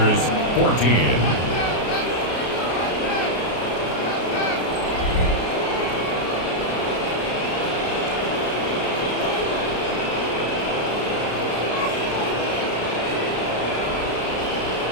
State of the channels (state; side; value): late; right; 33 ms